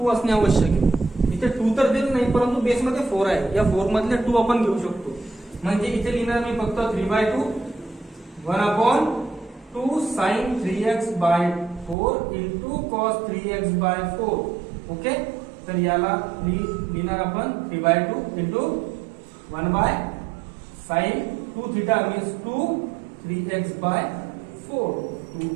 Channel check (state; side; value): drops out; left; at 12.0 s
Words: असणे आवश्यक आहे. इथे 2 तर दिलं नाही, परंतु बेस मध्ये 4 आहे, या 4 मधले 2 आपण घेऊ शकतो. म्हणजे इथे लिहिणार मी फक्त 3 by 2 1 upon 2 sine 3x by 4 into cos 3x by 4. Okay, तर याला लिहिणार आपण 3 by 2 into 1 by sine 2 theta means 2 3x by 4. 2